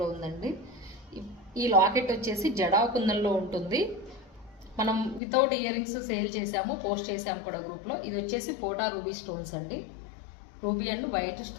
ఉందండి. ఈ లాకెట్ వచ్చేసి జడా కుందన్లో ఉంటుంది. మనం వితౌట్ ఇయర్ రింగ్స్ సేల్ చేసాము, పోస్ట్ చేసాము కూడా గ్రూప్లో. ఇది వచ్చేసి పోటా రూబీ స్టోన్స్ అండి. రూబీ అండ్ వైట్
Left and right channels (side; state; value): right; drops out; at 5.2 s